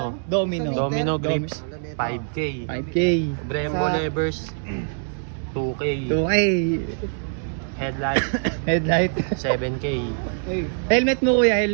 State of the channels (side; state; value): left; silent; 63 dB below the other